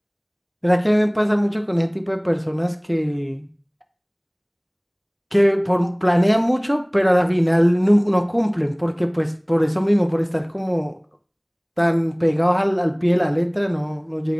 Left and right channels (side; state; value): both; identical; correlation 1.00